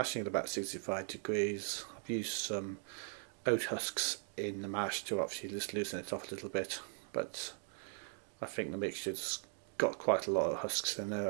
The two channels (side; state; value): left; silent; 52 dB below the other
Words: at about 65 degrees. I've used some oat husks in the mash to obviously just loosen it off a little bit, but I think the mixture's got quite a lot of husks in there